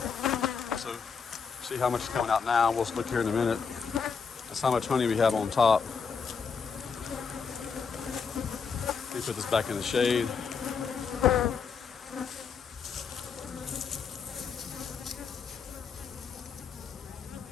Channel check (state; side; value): quieter; right; 5.8 dB